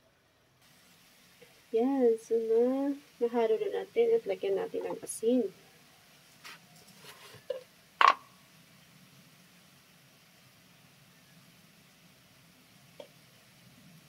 Yan, so nahalo na natin at lagyan natin ng asin.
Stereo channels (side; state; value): both; identical; correlation 1.00